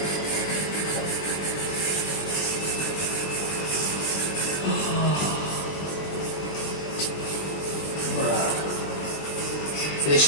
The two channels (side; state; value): right; late; 20 ms